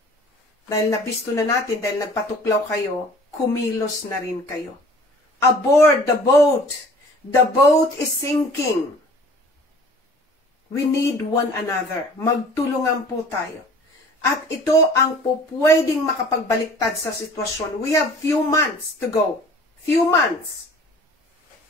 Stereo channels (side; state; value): both; normal; correlation 0.48